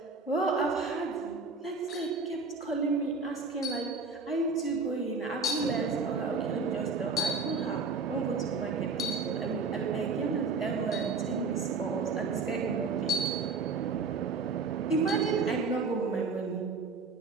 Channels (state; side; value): quieter; left; 4.1 dB